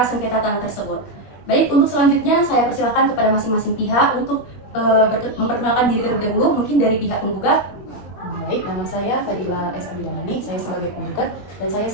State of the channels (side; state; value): right; late; 21 ms